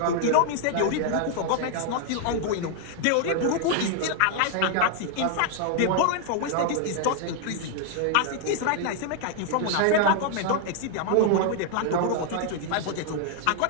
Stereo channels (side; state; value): both; different; correlation 0.00